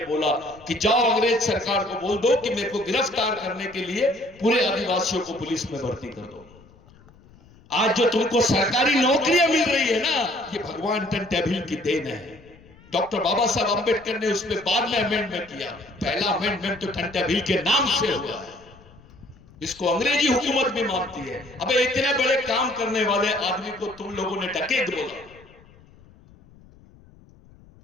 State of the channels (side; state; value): left; noise; rumble, 25 dB below the sound